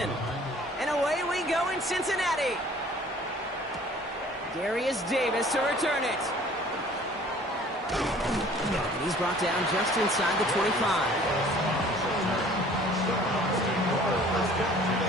And away we go in Cincinnati. Darius Davis to return it. And he's brought down just inside the 25.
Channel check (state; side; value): normal; both; correlation 0.51